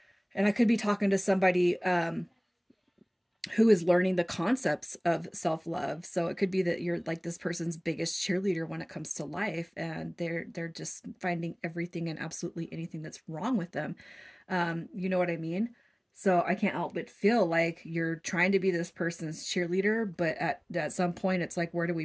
And I could be talking to somebody who is learning the concepts of self-love. So it could be that you're like this person's biggest cheerleader when it comes to life, and they're just finding everything and absolutely anything that's wrong with them. You know what I mean? So I can't help but feel like you're trying to be this person's cheerleader, but at some point it's like, where do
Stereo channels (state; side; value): identical; both; correlation 1.00